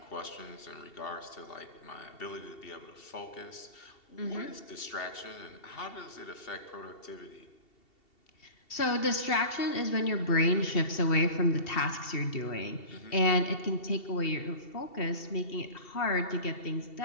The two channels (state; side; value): late; right; 2.7 ms